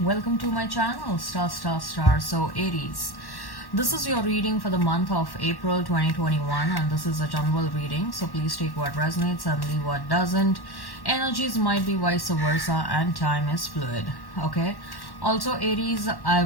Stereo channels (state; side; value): late; right; 1.1 ms